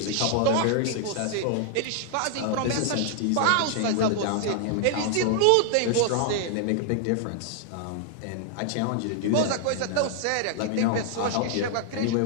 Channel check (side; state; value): both; different; correlation -0.01